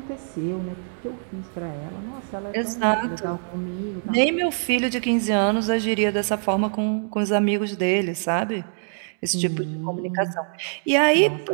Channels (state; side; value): silent; left; digital silence